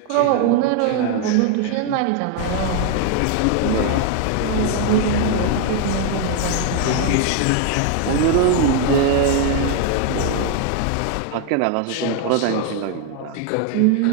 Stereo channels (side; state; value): both; different; correlation 0.00